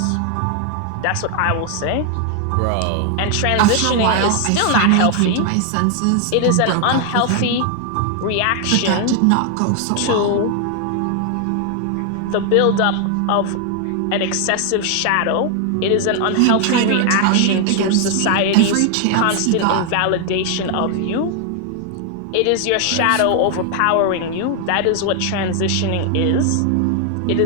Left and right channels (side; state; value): both; different; correlation 0.00